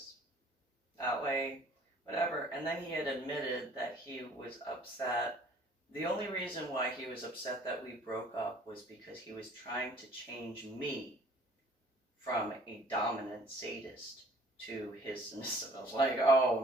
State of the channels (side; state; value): both; normal; correlation 0.54